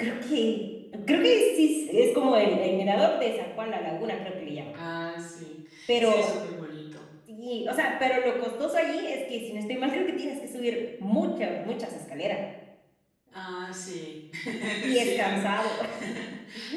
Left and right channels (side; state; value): both; identical; correlation 1.00